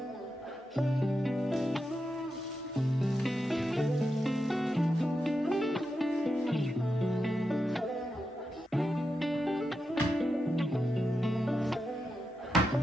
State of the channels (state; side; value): normal; both; correlation 0.88